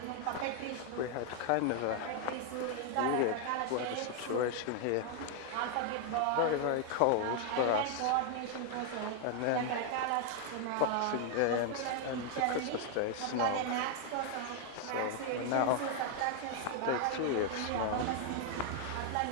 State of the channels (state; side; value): different; both; correlation 0.00